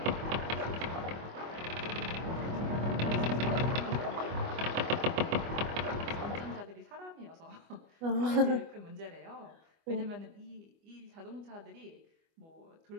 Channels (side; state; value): left; late; 25 ms